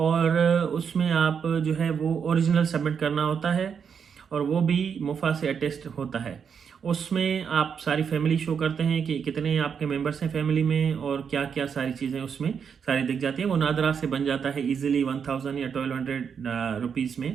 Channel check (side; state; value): left; quieter; 6.9 dB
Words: उसमें आप जो है वो ओरिजिनल सबमिट करना होता है, और वो भी मुफा से अटेस्ट होता है। उसमें आप सारी फैमिली शो करते हैं कि कितने आपके मेंबर्स हैं फैमिली में, और क्या क्या सारी चीज़ें उसमें सारी दिख जाती है। वो नादरा से बन जाता है इजीली 1000 या 1200 रुपीज़